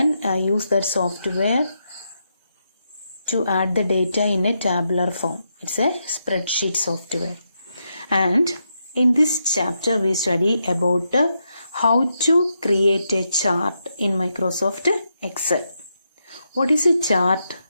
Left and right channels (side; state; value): both; inverted; correlation -0.83